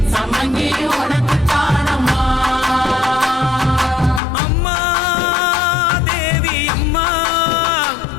சம்பங்கி உனக்கு தானம்மா அம்மா தேவி அம்மா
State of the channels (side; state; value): right; drops out; at 4.2 s